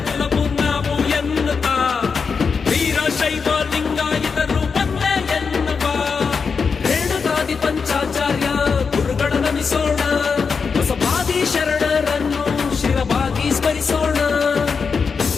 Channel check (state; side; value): quieter; right; 5.4 dB